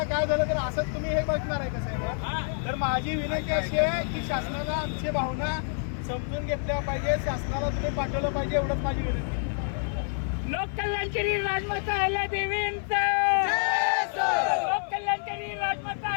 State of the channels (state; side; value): silent; right; 60 dB below the other